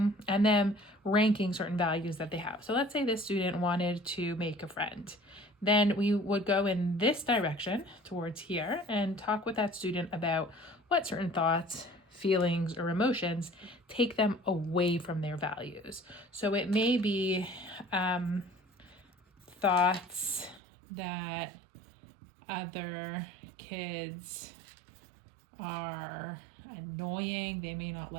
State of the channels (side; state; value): left; drops out; at 20.6 s